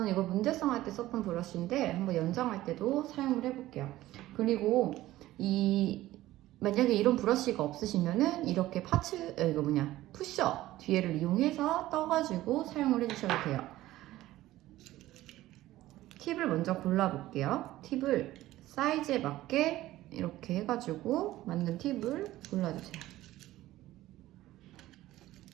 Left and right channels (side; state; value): left; quieter; 15.8 dB